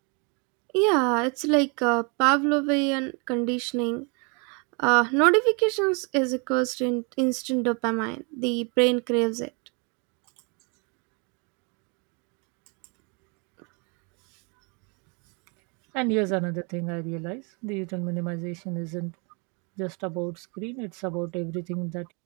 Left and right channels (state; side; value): quieter; left; 33.5 dB